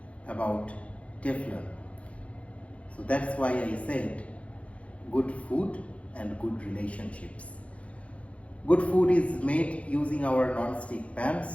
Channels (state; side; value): late; right; 0.063 ms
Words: about Teflon. So that's why I said good food and good relationships. Good food is made using our non-stick